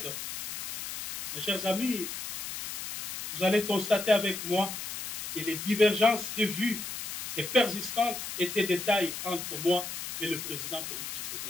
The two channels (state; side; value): noise; left; hiss, 7 dB below the sound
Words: mes chers amis, vous allez constater avec moi que les divergences de vues et persistantes étaient des tailles entre moi et le président Félix